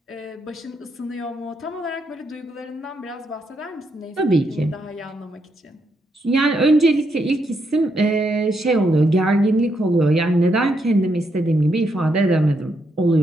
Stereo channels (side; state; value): both; normal; correlation 0.79